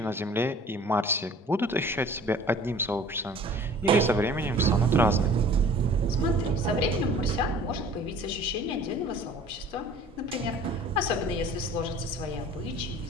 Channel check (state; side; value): normal; both; correlation 0.48